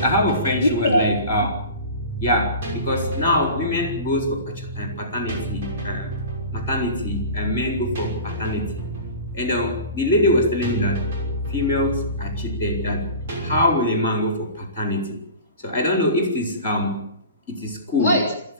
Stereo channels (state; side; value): inverted; both; correlation -0.36